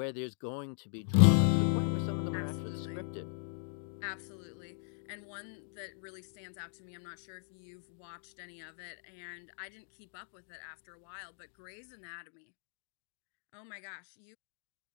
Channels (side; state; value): right; silent; digital silence